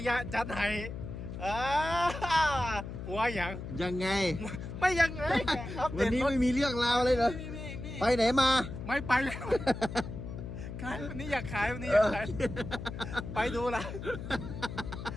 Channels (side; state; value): left; noise; hum, 8 dB below the sound